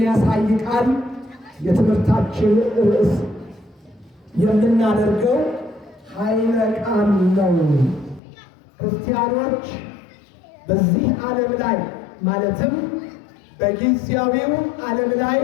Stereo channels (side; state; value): right; drops out; at 8.2 s